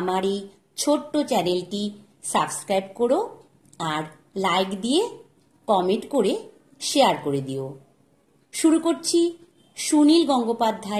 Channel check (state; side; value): identical; both; correlation 1.00